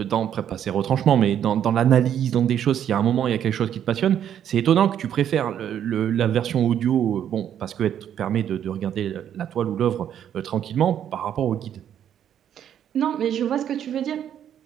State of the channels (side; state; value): left; quieter; 9.7 dB